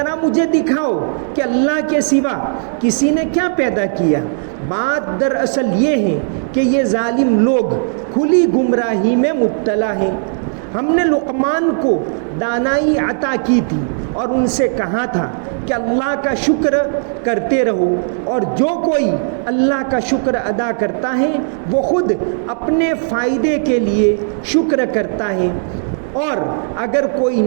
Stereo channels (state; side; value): silent; left; digital silence